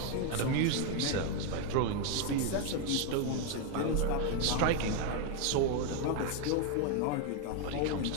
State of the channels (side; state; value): both; different; correlation 0.01